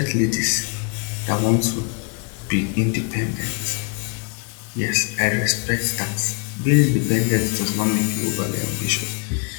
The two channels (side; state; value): right; quieter; 34.3 dB